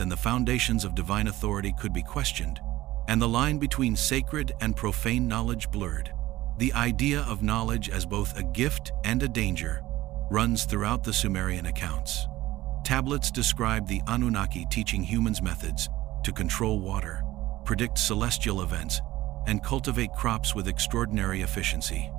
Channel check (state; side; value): quieter; left; 16.7 dB